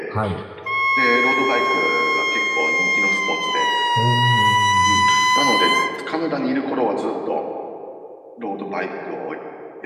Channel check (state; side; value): identical; both; correlation 1.00